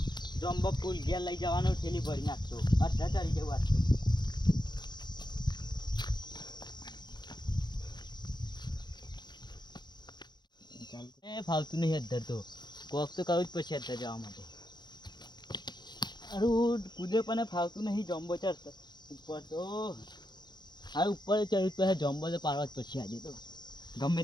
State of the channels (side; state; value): right; late; 0.21 ms